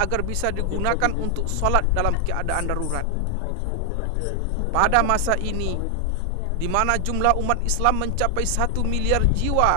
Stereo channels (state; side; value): different; both; correlation 0.00